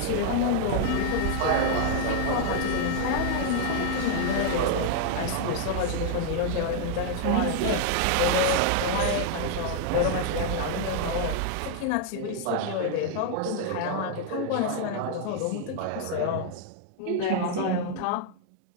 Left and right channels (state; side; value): different; both; correlation 0.00